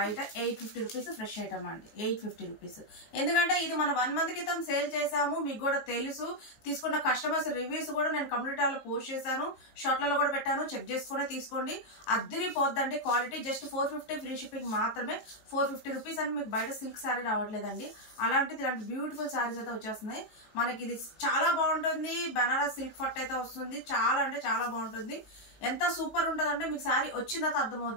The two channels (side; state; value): right; late; 19 ms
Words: 850 రూపీస్ ఫ్రెష్ ఐటమ్ అండి, 850 రూపీస్. ఎందుకంటే ఇది మనం 1 మంత్ క్రితం సేల్ చేసాము, మీకు కూడా తెలుసు. తీసుకున్న కస్టమర్స్ రివ్యూస్ కూడా నేను కమ్యూనిటీలో పోస్ట్ చేశాను, షార్ట్లలో కూడా పెట్టాను, చెక్ చేసుకునే తీసుకోండి. అద్దరిపోద్దండి క్వాలిటీ. జస్ట్ 450 ఫ్రీ షిప్పింగ్ మాత్రమే. 450 రూపీస్ అంటే మీకు బయట సిల్క్ శారీ రావట్లేదండి. అలాంటిది ఇలాంటి బ్యూటిఫుల్ శారీస్ అయితే వచ్చేస్తున్నాయి మనకి. ఇది చాలా బాగుంటుంది, బనారస్ సిల్క్ ఫట్ అయితే వస్తుంది. చాలా అంటే చాలా బాగుంటుంది. ఎంత సూపర్ ఉంటుంది అంటే మీకు శారీ వచ్చిన తర్వాత